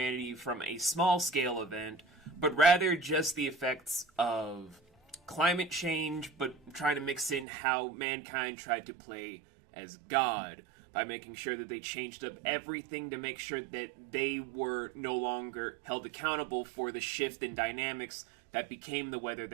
from a small-scale event, but rather just the effects of climate change, but trying to mix in how mankind tried to play as God by making sure that they changed up everything to make sure that they were no longer held accountable for the shift in dynamics that became the weather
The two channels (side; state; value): left; drops out; at 7.5 s